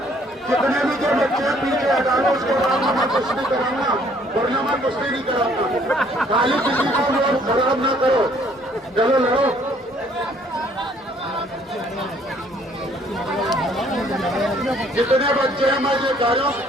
कितने भी जो बच्चे हैं पीछे हटा लो, उसके बाद मैं कुश्ती कराऊंगा, वरना मैं कुश्ती नहीं कराऊंगा। खाली किसी को लोग खराब ना करो, चलो लड़ो। जितने बच्चे हैं मैं ये कह रहा हूँ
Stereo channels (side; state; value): both; normal; correlation 0.62